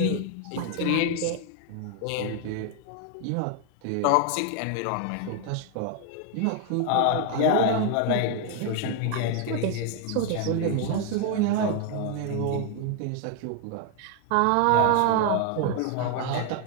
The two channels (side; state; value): both; different; correlation 0.00